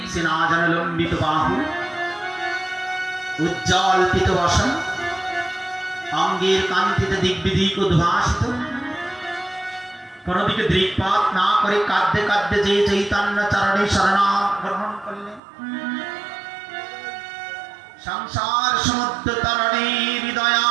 আজান লম্বিত বাহু, উজ্জ্বল পিত বসন, অঙ্গের কান্তিতে দিগ্বিদিক উদ্ভাসিত, কোনদিকে দৃকপাত না করে কাঁদতে কাঁদতে যে চৈতন্য চরণে শরণাগত গ্রহণ করলেন। সংসার সমুদ্র তরণে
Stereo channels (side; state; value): left; drops out; at 15.4 s